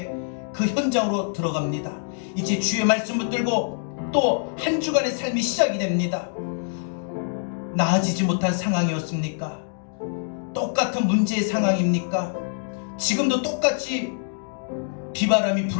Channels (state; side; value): silent; right; digital silence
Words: 그 현장으로 들어갑니다. 이제 주의 말씀 붙들고 또 한 주간의 삶이 시작이 됩니다. 나아지지 못한 상황이었습니까? 똑같은 문제의 상황입니까? 지금도 똑같이 비바람이